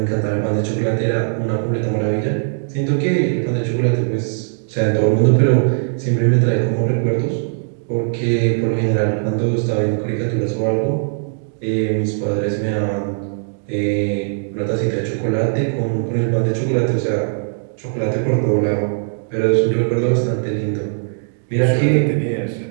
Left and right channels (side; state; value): left; silent; digital silence